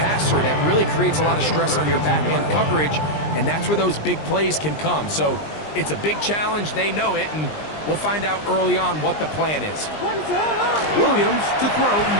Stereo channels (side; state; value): right; late; 20 ms